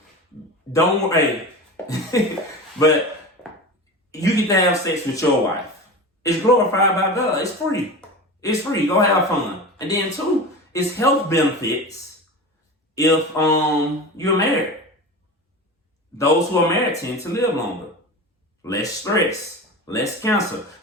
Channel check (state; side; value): normal; both; correlation 0.29